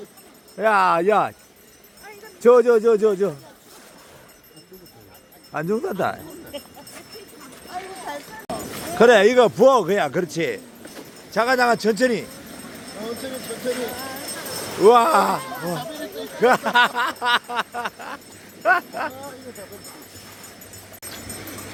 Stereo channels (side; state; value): both; identical; correlation 1.00